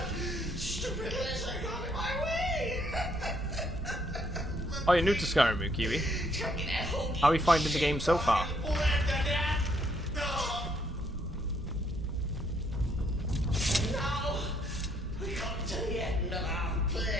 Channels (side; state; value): both; normal; correlation 0.70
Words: stupid lizard got in my way. Oh, you're new to Skyrim, Kiwi. How are you finding the game so far? Now, we come to the end of our